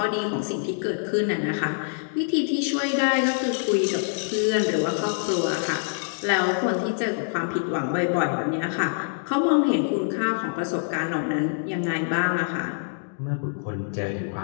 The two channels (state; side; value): silent; right; digital silence